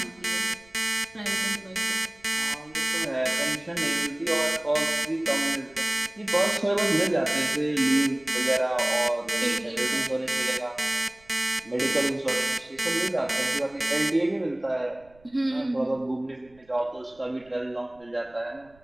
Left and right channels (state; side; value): noise; right; rumble, 29 dB below the sound